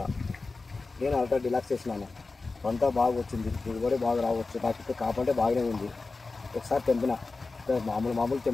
నేను అల్ట్రా డిలాక్స్ చేసినాను. పంట బాగా వచ్చింది, దిగుబడి బాగా రావచ్చు. నాకు కాపంటే బాగానే ఉంది. ఒకసారి తెంపిన మామూలు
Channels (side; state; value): right; quieter; 3.8 dB